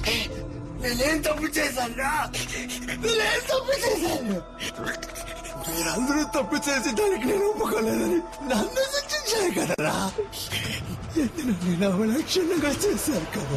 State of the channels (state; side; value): identical; both; correlation 1.00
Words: నేనేం తప్పు చేశాను? నేనేం తప్పు చేశాను? మీరందరూ తప్పు చేసి దానికి నేను ఒప్పుకోలేదని నన్ను శిక్షించారు కదరా. నేను అవలక్షణంగా చేశాను